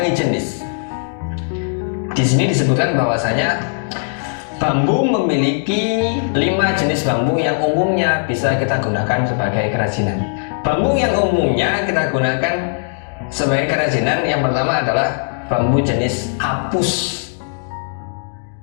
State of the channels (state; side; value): silent; right; digital silence